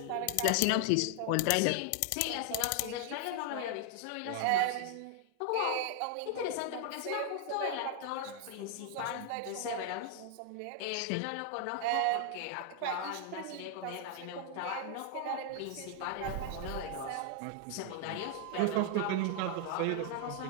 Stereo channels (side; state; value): both; different; correlation 0.00